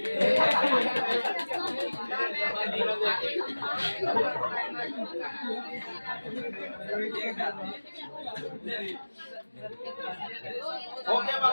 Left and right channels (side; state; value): both; inverted; correlation -1.00